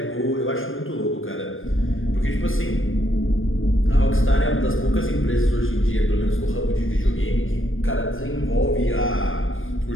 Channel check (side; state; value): right; late; 0.59 ms